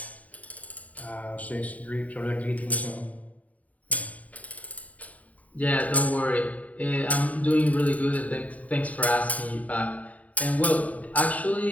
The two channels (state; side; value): late; right; 0.070 ms